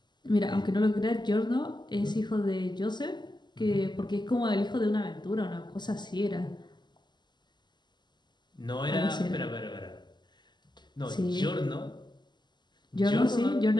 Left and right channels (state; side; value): late; right; 0.21 ms